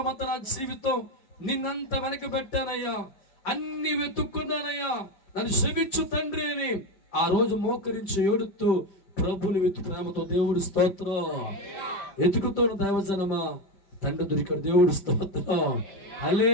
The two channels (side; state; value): right; late; 5.1 ms